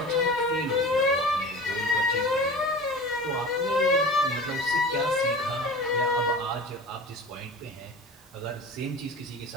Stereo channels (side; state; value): both; normal; correlation 0.36